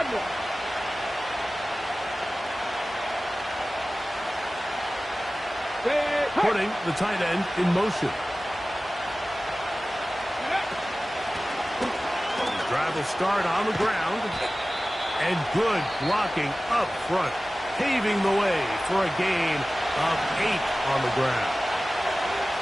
Putting the tight end in motion. Drive will start on the ground. And good blocking up front. Paving the way for a gain of 8 on the ground.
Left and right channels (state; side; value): normal; both; correlation 0.97